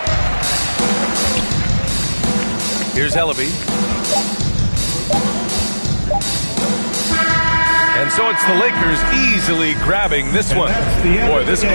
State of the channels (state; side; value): inverted; both; correlation -1.00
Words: Here's Ellaby. And so it's the Lakers easily grabbing this one. Boy, this